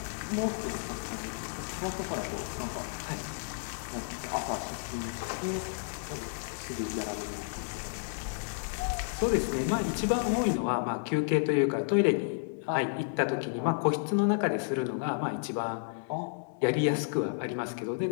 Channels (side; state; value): right; silent; digital silence